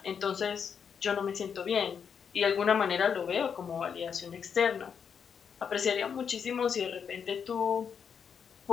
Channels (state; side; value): quieter; right; 7.0 dB